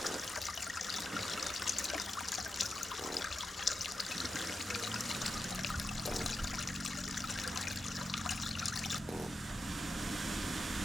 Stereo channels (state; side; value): normal; both; correlation 0.90